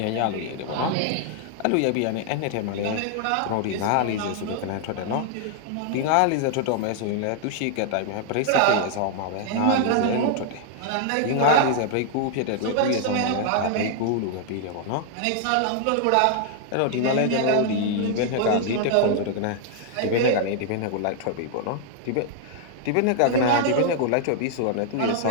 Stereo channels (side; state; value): both; different; correlation 0.00